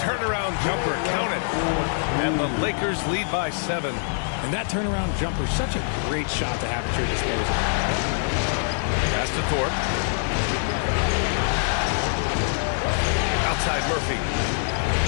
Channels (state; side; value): silent; right; 62 dB below the other